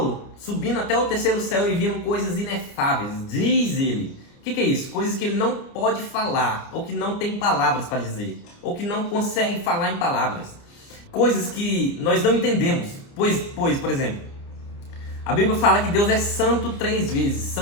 subindo até o terceiro céu e vendo coisas inefáveis. Diz ele. O que é isso? Coisas que ele não pode falar, ou que não tem palavras para dizer, ou que não consegue falar em palavras. Coisas que nós não entendemos. Pois, por exemplo, a Bíblia fala que Deus é santo 3 vezes.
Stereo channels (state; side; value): late; right; 29 ms